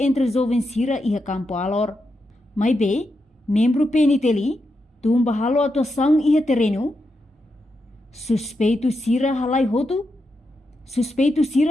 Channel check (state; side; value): normal; both; correlation 0.85